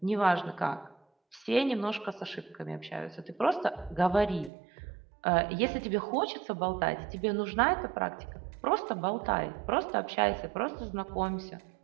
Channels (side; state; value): left; drops out; at 4.5 s